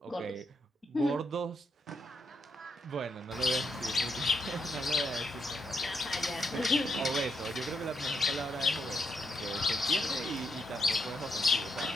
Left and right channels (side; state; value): both; normal; correlation 0.79